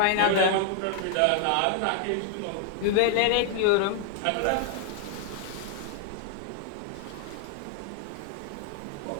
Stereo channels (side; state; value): both; different; correlation 0.00